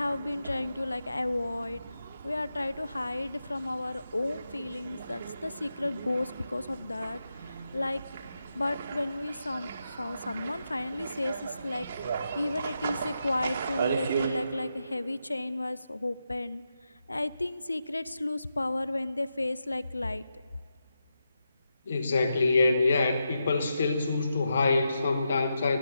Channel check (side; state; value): both; inverted; correlation -0.86